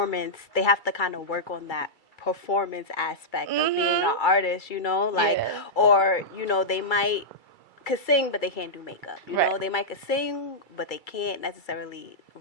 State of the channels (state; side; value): late; right; 2.3 ms